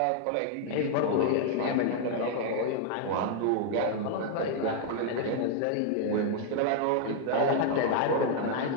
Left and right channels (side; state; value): both; different; correlation 0.00